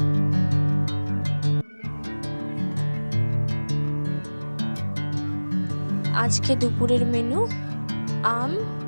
আজকে দুপুরের মেনু আম,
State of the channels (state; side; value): inverted; both; correlation -1.00